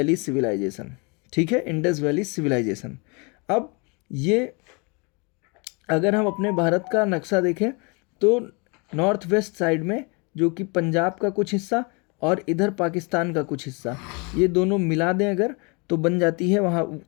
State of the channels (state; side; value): quieter; right; 31.0 dB